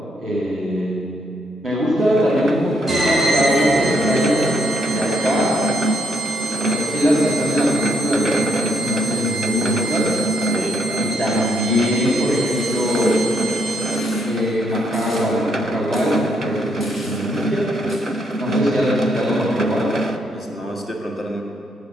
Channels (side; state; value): both; normal; correlation 0.74